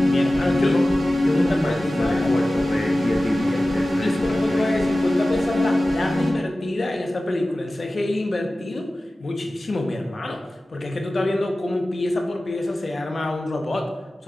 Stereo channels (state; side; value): normal; both; correlation 0.96